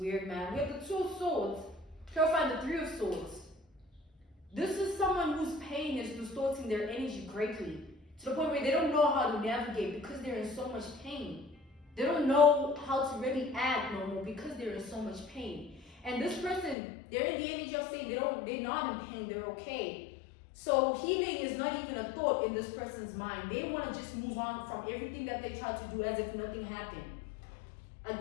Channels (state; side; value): drops out; right; at 16.8 s